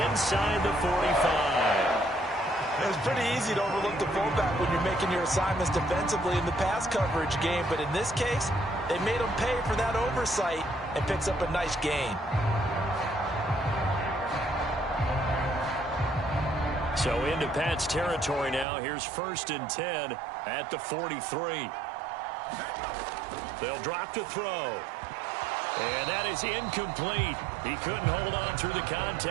inside the 45. It's pretty easy to overlook the fullback when you're making your assignments defensively in the pass coverage game. But in this case, they made him pay for that oversight and picks up a nice gain. So into Pat's territory now. Here's 1st and 10 at the 43. They'll drop to throw. And that is incomplete. He couldn't hold on through the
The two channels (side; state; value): left; drops out; at 18.7 s